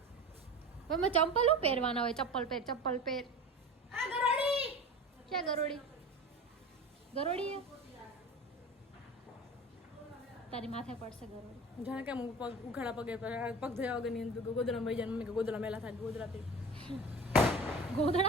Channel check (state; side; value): normal; both; correlation 0.34